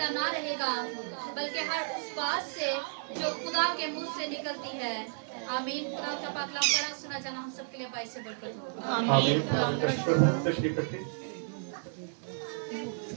ना रहेगा, बल्कि हर उस बात से जो खुदा के मुंह से निकलती है। आमीन। खुदा का पाक कलाम पढ़ा सुना जाना हम सबके लिए बाइस से बरकत हो। आमीन। तशरीफ रखिए।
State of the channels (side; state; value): left; silent; digital silence